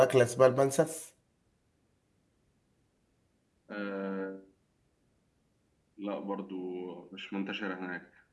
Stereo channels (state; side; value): identical; both; correlation 1.00